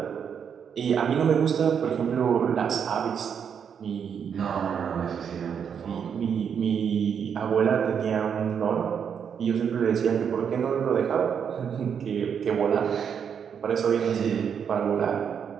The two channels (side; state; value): left; quieter; 7.5 dB